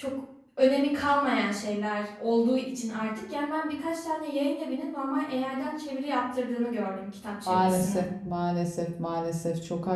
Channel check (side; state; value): both; identical; correlation 1.00